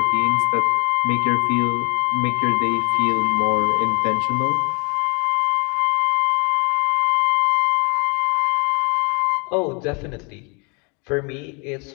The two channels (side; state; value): right; quieter; 33.5 dB